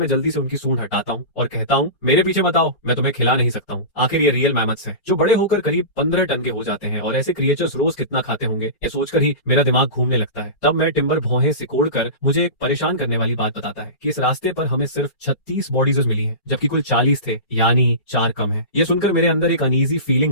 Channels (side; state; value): right; late; 4.3 ms